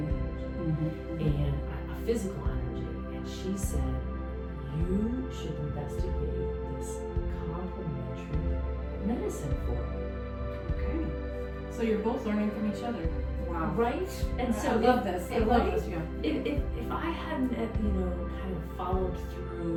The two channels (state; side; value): identical; both; correlation 1.00